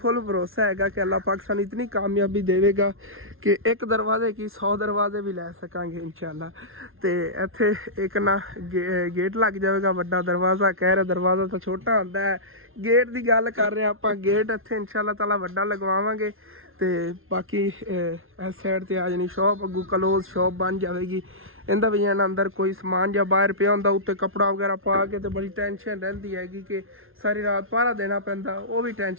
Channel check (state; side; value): late; left; 0.61 ms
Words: भरोसा है कि अल्लाह पाक सानू इतनी कामयाबी देगा कि एक दरवाजे की 100 दरवाजे भी लै सकांगे इंशाअल्लाह। तो इत्थे एक ना गेट लग जाएगा, बड़ा दरवाज़ा कह रहा, दरवाज़ा तो छोटा होता है, गेट की गल कर रहे हैं आप, गेट इत्थे इंशाअल्लाह ताला वड्डा लगवावांगे। तो बाकी इस साइड ते आ जानी शॉप, अगू क्लोज शॉप बन जाएगी। इंदा भी अंदर कोई समान या बाहर पिया होंदा, उत्ते कपड़ा वगैरह पा के तो बड़ी टेंशन रहिंदी हैगी कि सारी रात पहरा देना पैंदा, वो भी